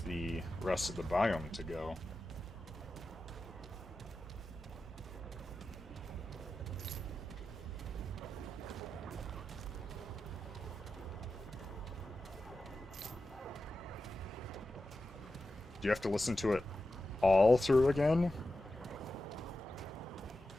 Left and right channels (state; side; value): normal; both; correlation 0.92